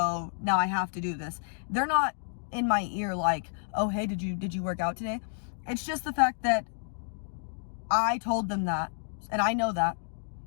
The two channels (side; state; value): right; silent; digital silence